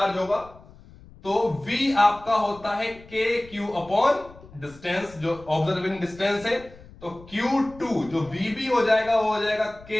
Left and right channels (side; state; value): left; noise; rumble, 21 dB below the sound